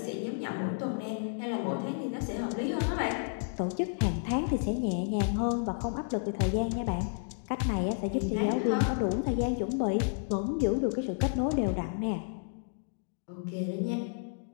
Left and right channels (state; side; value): silent; right; digital silence